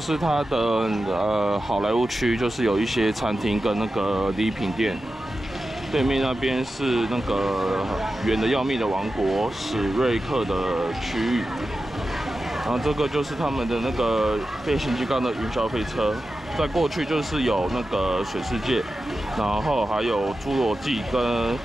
它的好莱坞区，就是有一些餐厅跟那个礼品店。对面那边是那个远的要命的王国史瑞克的区域。然后这个就是他们的那个变形金刚的云霄飞车。再过去就是有那个水世界，然后还有侏罗纪跟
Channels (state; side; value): normal; both; correlation 0.92